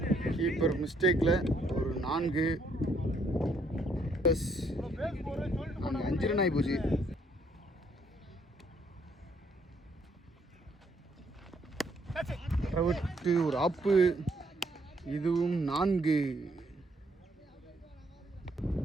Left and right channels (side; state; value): both; normal; correlation 0.69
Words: கீப்பர் மிஸ்டேக்கில் ஒரு 4. 5 ரன் ஆகி போச்சு. விட்டு ஒரு ஆப்பு. இதுவும் 4